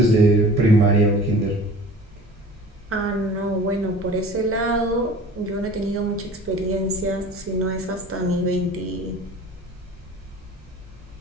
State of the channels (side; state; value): both; normal; correlation 0.42